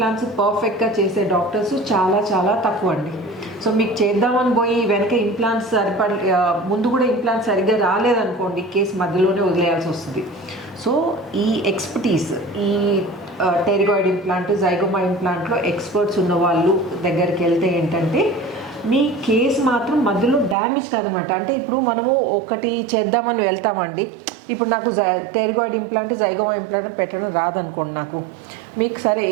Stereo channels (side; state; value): left; drops out; at 20.6 s